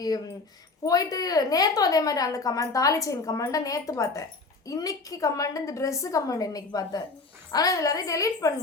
போயிட்டு நேற்றும் அதே மாதிரி அந்த கமெண்ட் தாலி செயின் கமெண்ட்டை நேற்று பார்த்தேன். இன்னைக்கு கமெண்ட் இந்த ட்ரெஸ்ஸு கமெண்ட் இன்னைக்கு பார்த்தேன். ஆனால் எல்லாரையும் டெலீட்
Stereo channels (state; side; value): quieter; right; 3.8 dB